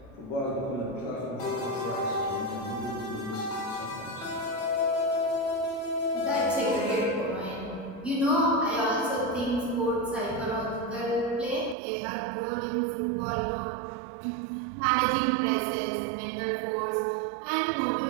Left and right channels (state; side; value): drops out; left; at 11.8 s